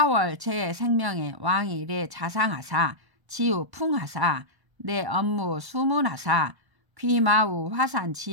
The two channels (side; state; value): left; late; 1.1 ms